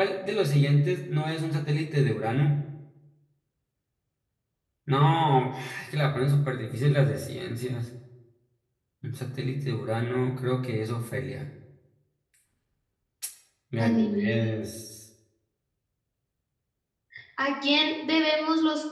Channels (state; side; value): identical; both; correlation 1.00